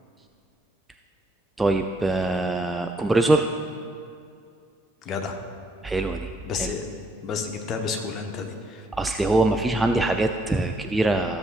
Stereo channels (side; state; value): both; normal; correlation 0.72